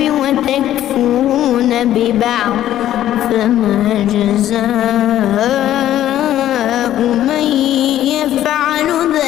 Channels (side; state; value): right; quieter; 12.4 dB